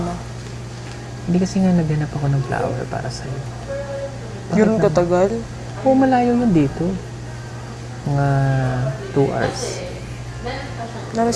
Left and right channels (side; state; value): both; identical; correlation 1.00